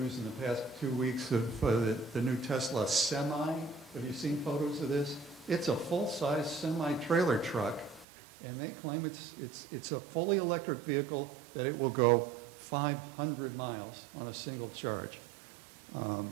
in the past 2 weeks of the new Tesla Semi. Have you seen photos of this? It's a full-size semi-trailer truck, and they claim it's a fully electric vehicle that it will go 500 miles on a single charge.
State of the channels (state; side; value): drops out; left; at 8.1 s